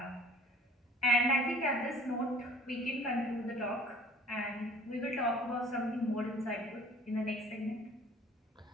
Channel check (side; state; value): both; normal; correlation 0.51